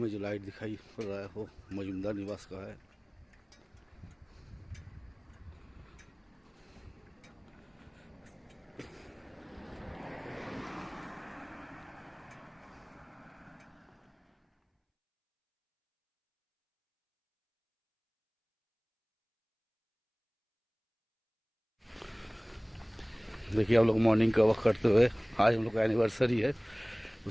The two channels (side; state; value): both; identical; correlation 1.00